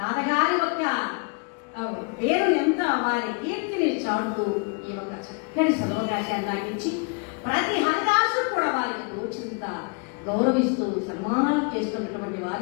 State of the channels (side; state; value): right; quieter; 33.6 dB